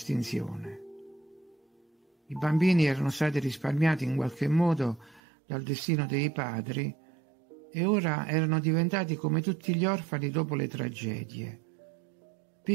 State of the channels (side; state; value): left; drops out; at 5.2 s